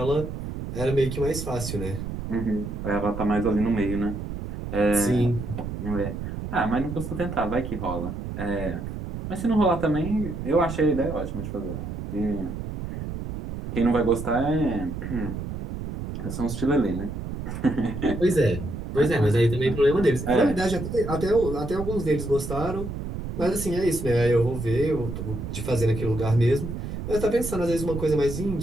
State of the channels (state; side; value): noise; right; rumble, 6 dB below the sound